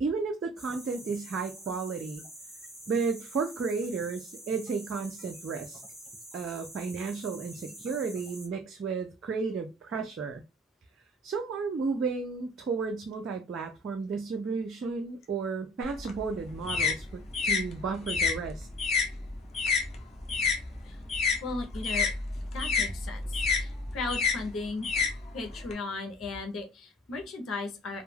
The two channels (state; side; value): normal; both; correlation 0.48